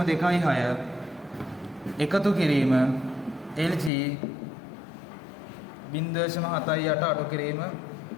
එකතු කිරීම LG 0.78 අඩු කිරීම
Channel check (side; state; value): right; drops out; at 3.9 s